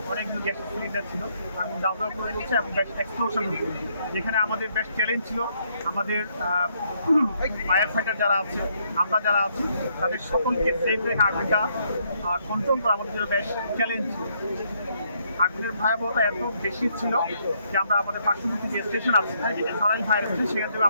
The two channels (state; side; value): inverted; both; correlation -0.71